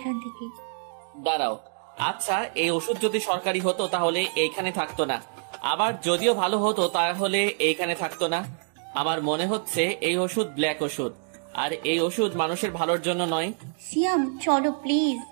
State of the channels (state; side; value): silent; left; digital silence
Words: থেকে। দাঁড়াও, আচ্ছা এই ওষুধ যদি সরকারি হতো তাহলে এইখানে থাকতো না, আবার যদিও ভালো হতো তাহলে এইখানে থাকতো না। আমার মনে হচ্ছে এই ওষুধ ব্ল্যাক ওষুধ, আর এই ওষুধ মানুষের ভালোর জন্য নয়। সিয়াম চলো প্লিজ,